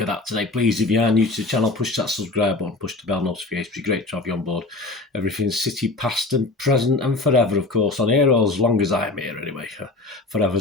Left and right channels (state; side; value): quieter; right; 3.2 dB